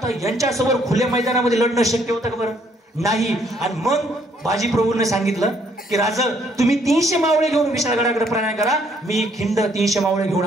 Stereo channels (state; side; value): normal; both; correlation 0.67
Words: यांच्यासोबत खुल्या मैदानामध्ये लढणं शक्य होतं का बरं? नाही. आणि मग बाजीप्रभूने सांगितलं की राजा, तुम्ही 300 मावळे घेऊन विशाळगडाकडे प्रयाण करा, मी खिंड 300 मावळे घेऊन